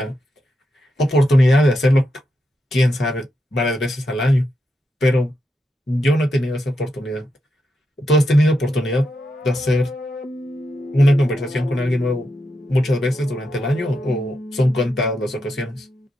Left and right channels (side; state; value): both; normal; correlation 0.84